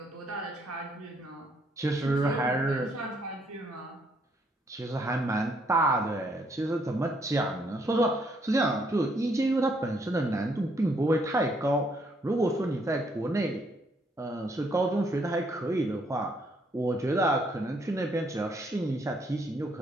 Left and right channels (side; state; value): both; normal; correlation 0.70